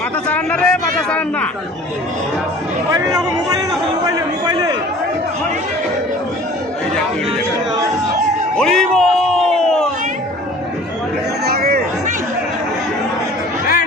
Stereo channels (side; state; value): both; normal; correlation 0.47